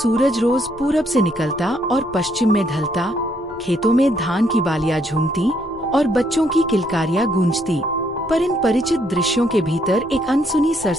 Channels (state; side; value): normal; both; correlation 0.71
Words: रोज पूरब से निकलता और पश्चिम में ढलता, खेतों में धान की बालियां झूमती और बच्चों की किलकारियां गूंजती, पर इन परिचित दृश्यों के भीतर एक अनसुनी